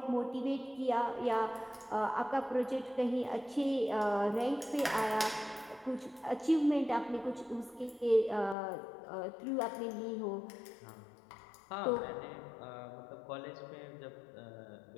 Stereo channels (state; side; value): drops out; right; at 8.6 s